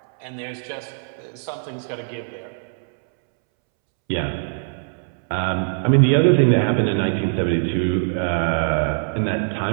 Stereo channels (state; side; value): silent; left; 64 dB below the other